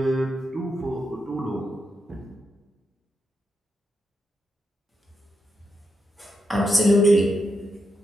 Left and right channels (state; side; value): normal; both; correlation 0.83